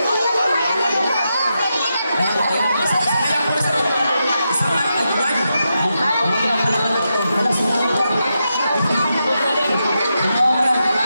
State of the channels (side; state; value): both; inverted; correlation -0.86